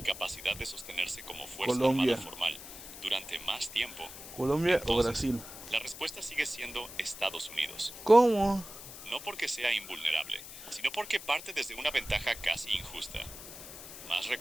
capacidad de sostenerse como fuerza armada Colombia. formal durante más tiempo, Colombia o entonces Brasil. la respuesta sigue siendo Estados Unidos. ¿Cómo? No porque sea invulnerable, sino porque parte desde una ventaja casi injusta: más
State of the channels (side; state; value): left; noise; hiss, 13 dB below the sound